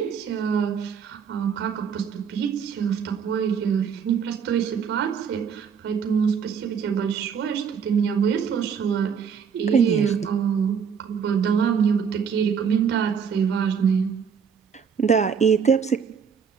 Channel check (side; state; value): left; quieter; 6.8 dB